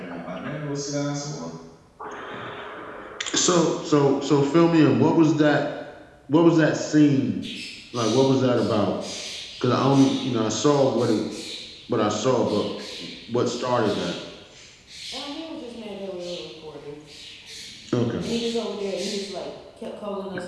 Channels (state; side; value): identical; both; correlation 1.00